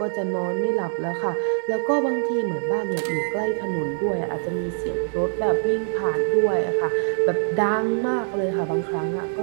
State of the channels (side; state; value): left; silent; digital silence